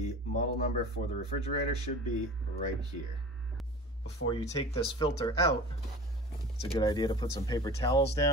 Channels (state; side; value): normal; both; correlation 0.37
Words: model number for the refrigerator should be right here. Before you take this filter out, it's a good idea to put some paper towels